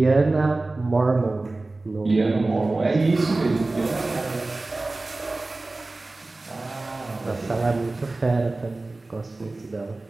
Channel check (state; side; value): quieter; left; 3.1 dB